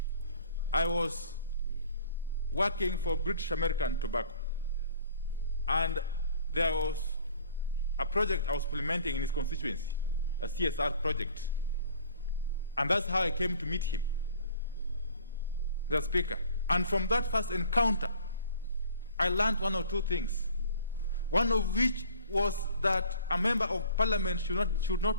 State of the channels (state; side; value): inverted; both; correlation -0.51